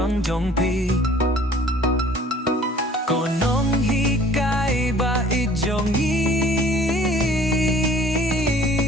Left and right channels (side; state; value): both; normal; correlation 0.52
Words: jong ko nonghikai baieid jong